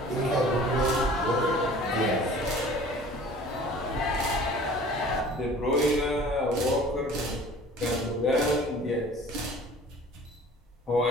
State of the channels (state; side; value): normal; both; correlation 0.46